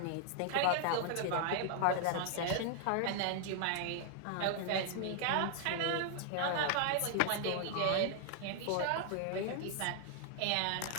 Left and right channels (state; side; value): different; both; correlation 0.00